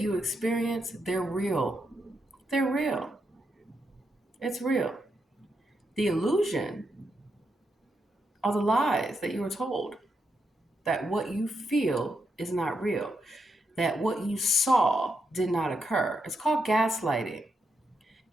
experience, they're real. They're real. It's real. The illusion are the lies that you were told that what you feel is not real, that what you saw did not occur. It's called gaslighting.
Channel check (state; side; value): normal; both; correlation 0.82